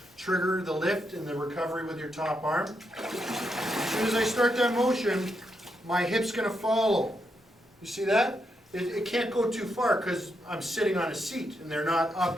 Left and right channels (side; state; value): both; normal; correlation 0.82